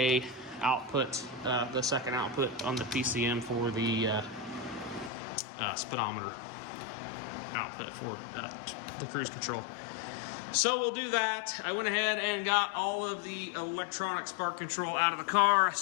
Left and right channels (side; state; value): right; drops out; at 5.1 s